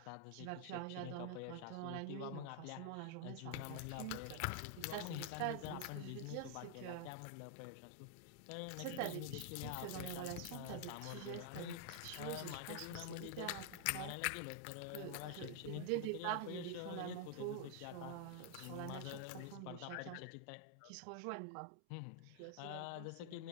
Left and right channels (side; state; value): both; different; correlation 0.00